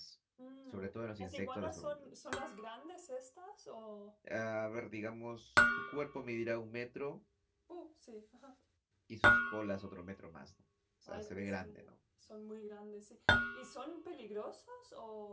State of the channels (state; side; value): identical; both; correlation 1.00